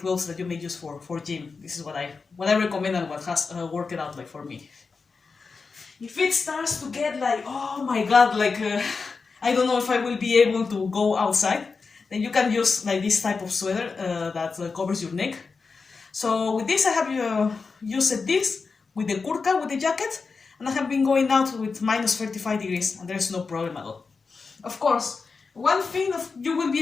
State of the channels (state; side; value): quieter; right; 4.7 dB